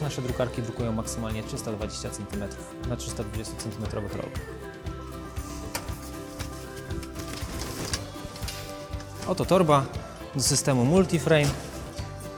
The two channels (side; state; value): both; identical; correlation 1.00